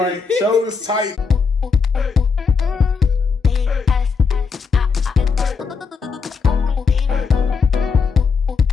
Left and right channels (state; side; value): quieter; right; 5.3 dB